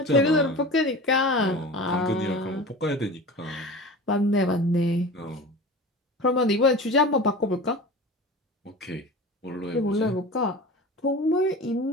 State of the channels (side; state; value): both; normal; correlation 0.34